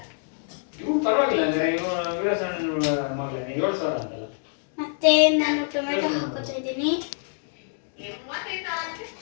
ಮತ್ತೆ ನಾನು ಟೊಮೆಟೊ ಹಾಕೋತಾ ಇದ್ದೀನಿ.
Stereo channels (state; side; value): silent; right; digital silence